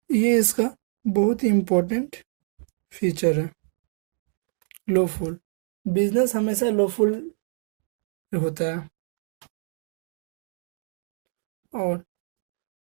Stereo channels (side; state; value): left; silent; 59 dB below the other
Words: ये इसका बहुत ही इम्पोर्टेंट फीचर है। लॉफुल बिजनेस हमेशा लॉफुल होता है। और